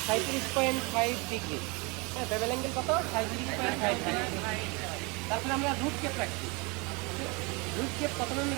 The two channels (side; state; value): left; quieter; 28.9 dB